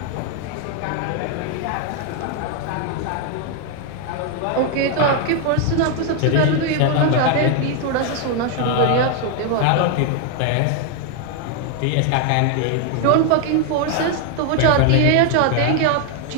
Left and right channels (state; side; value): different; both; correlation 0.01